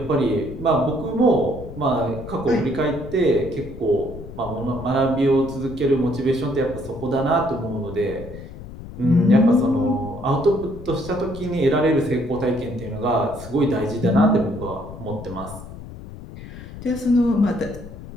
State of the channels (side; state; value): left; noise; rumble, 13 dB below the sound